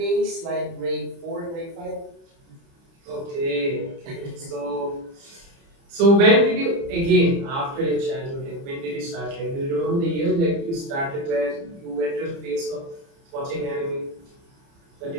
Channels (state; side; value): late; left; 30 ms